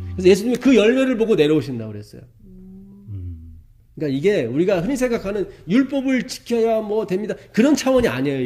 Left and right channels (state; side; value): identical; both; correlation 1.00